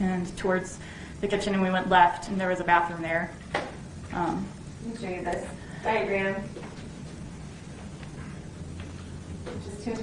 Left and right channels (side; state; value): both; identical; correlation 1.00